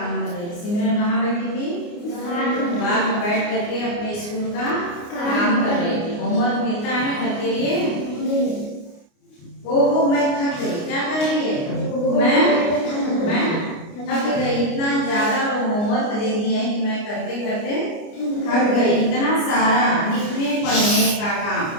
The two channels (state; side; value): late; right; 29 ms